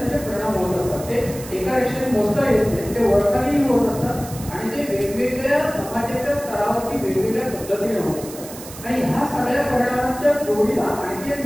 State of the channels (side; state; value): right; noise; hiss, 14 dB below the sound